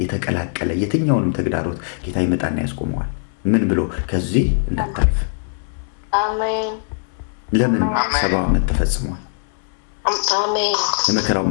የተቀላቀለ የትኛውንም ተግዳሮት ጌታ ይመጣና ያስቆመዋል። ምን ብሎ? ከዚህ እንዳታልፍ። አሜን። ለምን? 70 ዓመት ተፈጽሟል። አሜን። የመከራው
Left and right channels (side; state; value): right; silent; digital silence